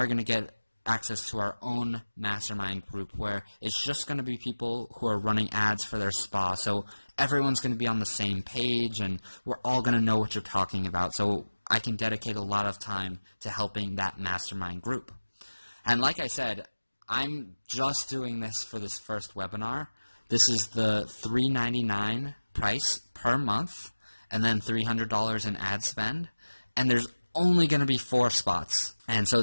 going to get access to our own mastermind group where it's just going to be people who are running ads for their spa. So everyone's going to be on the same page and we're all going to know what you're talking about. So I can dedicate a lot of time to helping that mastermind group. And like I said, I'm just doing this for this first webinar. This is the $3.99 price per month and then $300 in ad spend. And there's only going to be 4 spots. And so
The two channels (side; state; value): both; inverted; correlation -1.00